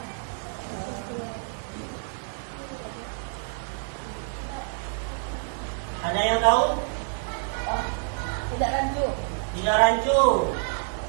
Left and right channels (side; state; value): left; silent; 56 dB below the other